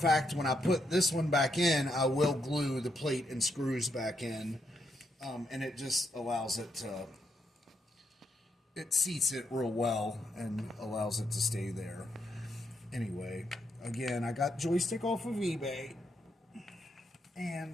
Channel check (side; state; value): both; normal; correlation 0.79